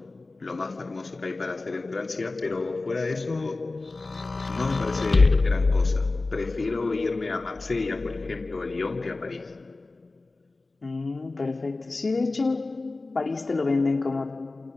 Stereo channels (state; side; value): quieter; right; 3.3 dB